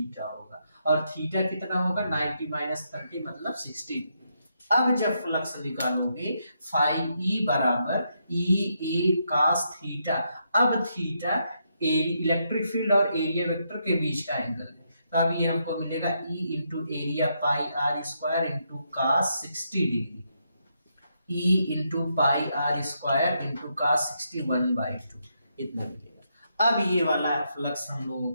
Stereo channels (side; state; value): both; inverted; correlation -0.79